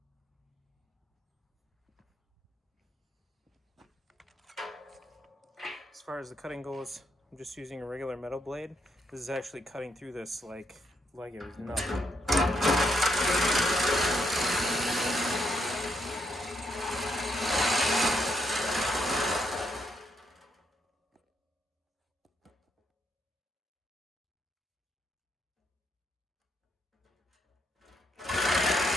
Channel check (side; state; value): both; normal; correlation 0.77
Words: As far as the cutting goes, I'm just using a regular metal blade. This is actually cutting through this like it was nothing.